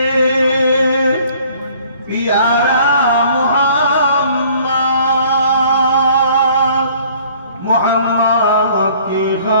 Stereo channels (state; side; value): inverted; both; correlation -0.56